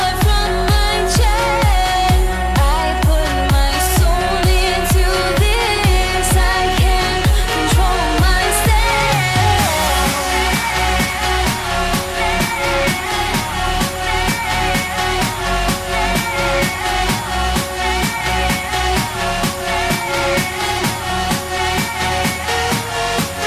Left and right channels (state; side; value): identical; both; correlation 1.00